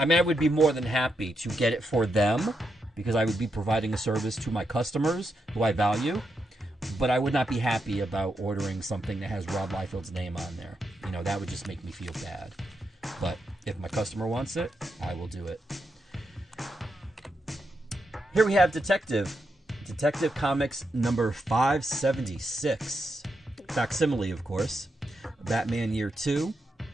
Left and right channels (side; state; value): both; normal; correlation 0.84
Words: mean, I would be more than happy to get it for them because I would be providing a service to my customers who I value. But I would not be happy about ordering something that has Rob Liefeld's name on there. You know, that would just make me feel bad. But if my customer wants it, I will do it. Here we have Detective Comics number 576. Facsimile, of course. Batman Year 2.